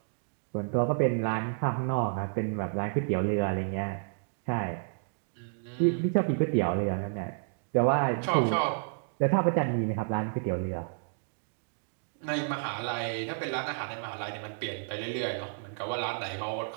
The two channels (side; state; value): left; silent; digital silence